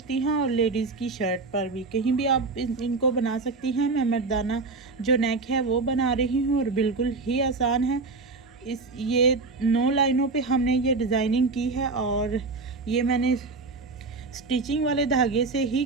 हैं और लेडीज़ की शर्ट पर भी, कहीं भी आप इनको बना सकती हैं। मैं मर्दाना जो नेक है वो बना रही हूँ और बिल्कुल ही आसान है। ये 9 लाइनों पे हमने ये डिज़ाइनिंग की है और ये मैंने स्टिचिंग वाले धागे से ही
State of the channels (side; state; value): left; quieter; 3.8 dB